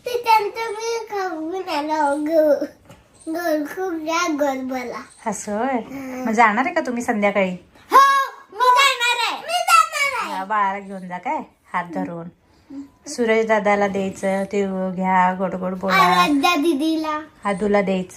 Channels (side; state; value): both; identical; correlation 1.00